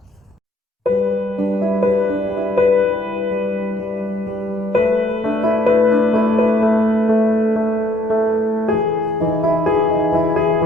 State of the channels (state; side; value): normal; both; correlation 0.64